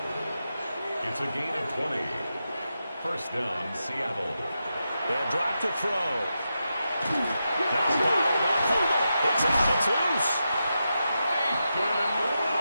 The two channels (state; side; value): inverted; both; correlation -0.88